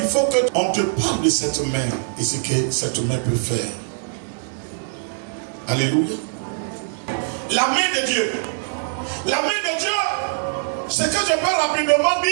faut qu'on te parle de cette main et ce que cette main peut faire. Alléluia. La main de Dieu. La main de Dieu, ce que je peux rapidement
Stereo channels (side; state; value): left; silent; digital silence